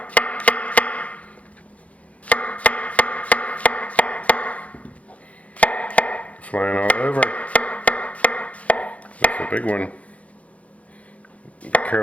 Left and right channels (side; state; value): right; late; 0.065 ms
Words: Flying all over. That's a big one. Be